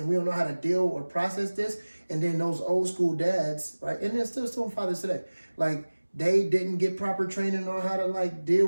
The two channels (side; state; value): both; inverted; correlation -1.00